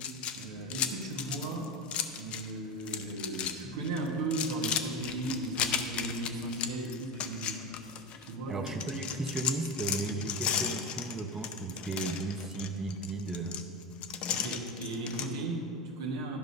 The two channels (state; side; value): normal; both; correlation 0.17